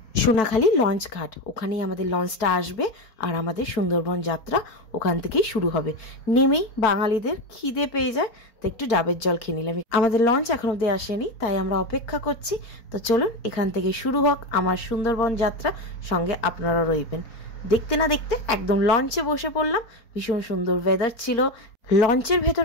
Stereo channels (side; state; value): right; late; 4.5 ms